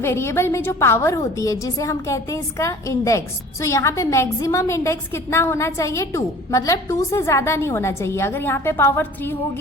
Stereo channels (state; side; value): normal; both; correlation 0.46